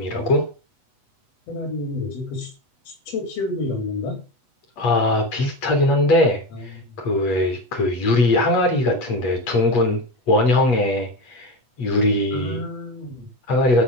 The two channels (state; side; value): late; right; 8.1 ms